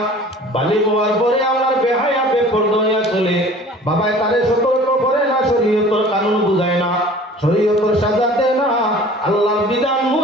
বালি হওয়ার পরে আমার বেহায়া বেপরদা হইয়া চলে বাবায় তারে সতর্ক করে না শরীয়তের কানুন বুঝায় না শরীয়তের সাজা দেয় না আল্লাহর বিধান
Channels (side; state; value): both; normal; correlation 0.46